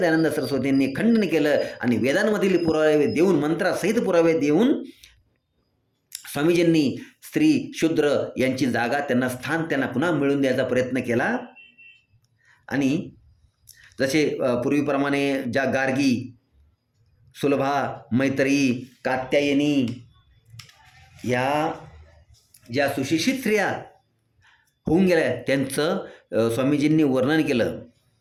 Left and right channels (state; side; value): identical; both; correlation 1.00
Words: सरस्वतींनी खंडन केलं आणि वेदांमधील पुरावे देऊन, मंत्रासहित पुरावे देऊन स्वामीजींनी स्त्री शूद्र यांची जागा, त्यांना स्थान त्यांना पुन्हा मिळवून द्यायचा प्रयत्न केला. आणि जसे पूर्वीप्रमाणे ज्या गार्गी, सुलभा, मैत्री, कात्यायनी या ज्या सुशिक्षित स्त्रिया होऊन गेल्या त्यांचं स्वामीजींनी वर्णन केलं.